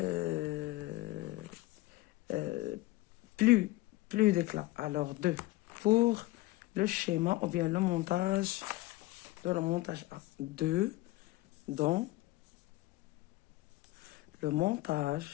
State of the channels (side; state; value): right; quieter; 18.9 dB